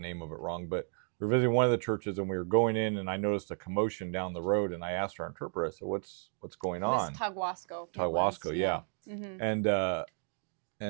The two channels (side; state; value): left; silent; 56 dB below the other